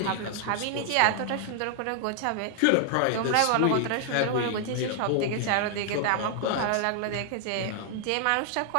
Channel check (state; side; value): different; both; correlation 0.00